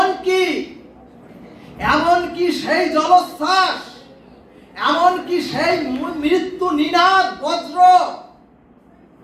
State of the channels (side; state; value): both; identical; correlation 1.00